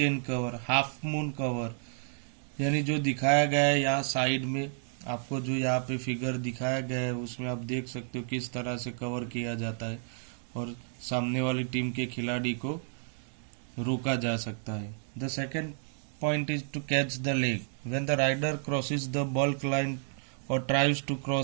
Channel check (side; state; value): left; silent; digital silence